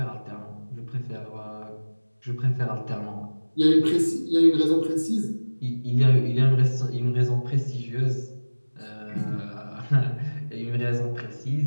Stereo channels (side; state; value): both; inverted; correlation -1.00